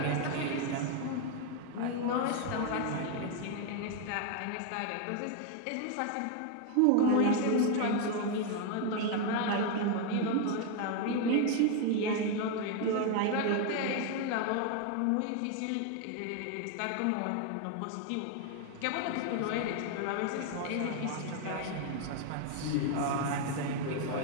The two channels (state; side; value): different; both; correlation 0.01